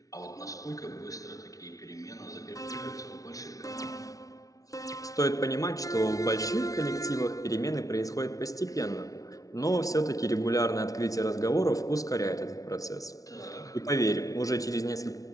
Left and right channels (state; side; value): late; right; 0.17 ms